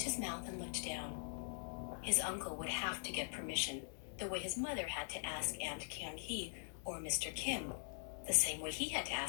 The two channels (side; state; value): right; silent; digital silence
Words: his mouth and looked down. His uncle would have to get permission, the way his mother had to ask Aunt Kyung-hee or Mr. Kim, the same way he had to